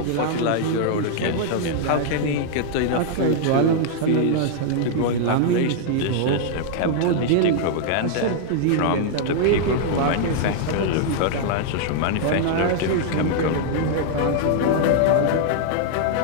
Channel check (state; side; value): different; both; correlation -0.01